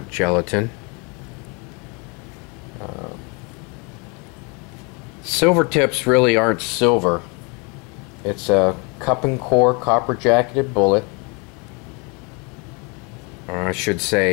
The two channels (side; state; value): right; quieter; 31.5 dB